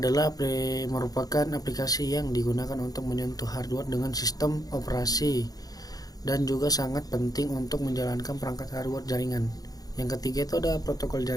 merupakan aplikasi yang digunakan untuk menyentuh hardware dengan sistem operasi dan juga sangat penting untuk menjalankan perangkat hardware jaringan. Yang ketiga itu ada protokol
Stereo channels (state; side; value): late; right; 0.18 ms